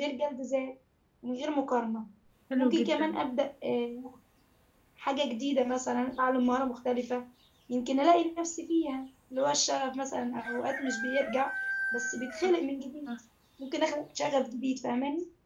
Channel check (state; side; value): identical; both; correlation 1.00